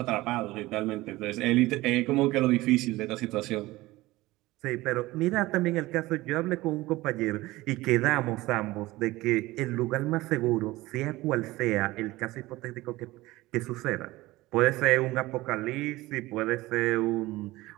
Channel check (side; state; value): left; quieter; 19.0 dB